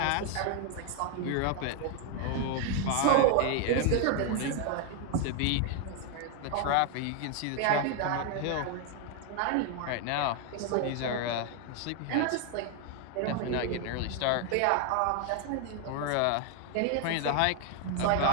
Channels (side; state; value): both; different; correlation 0.01